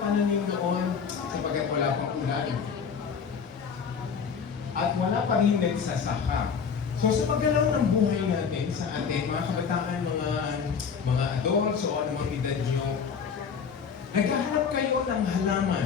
noon? Sapagkat wala pang ulan. At wala pa rin nagsasaka. So sa paggalaw ng buhay natin sa atin, mga kabataan, mga adults o anumang edad nyo, naghahanap kayo ng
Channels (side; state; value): right; quieter; 6.4 dB